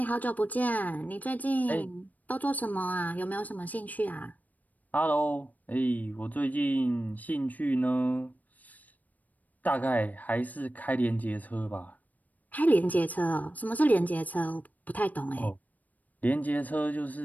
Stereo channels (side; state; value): right; late; 0.078 ms